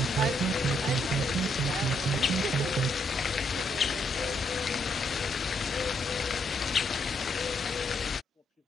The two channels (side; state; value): both; normal; correlation 0.75